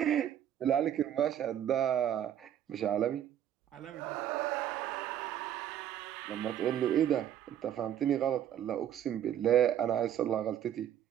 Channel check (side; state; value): left; quieter; 10.4 dB